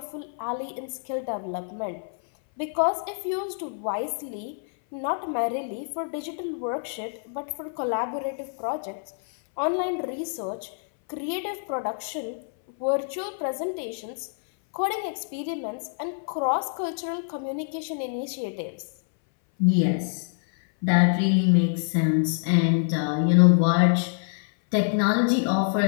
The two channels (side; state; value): right; silent; 59 dB below the other